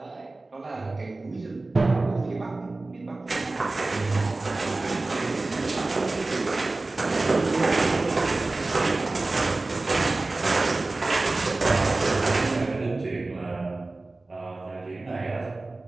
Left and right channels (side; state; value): left; quieter; 3.2 dB